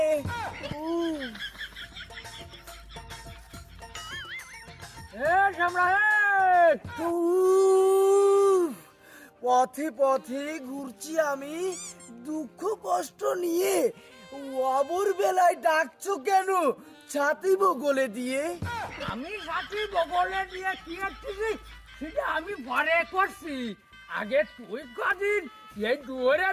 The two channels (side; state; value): both; identical; correlation 1.00